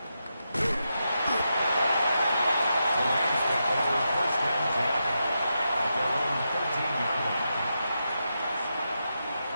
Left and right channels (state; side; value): inverted; both; correlation -0.86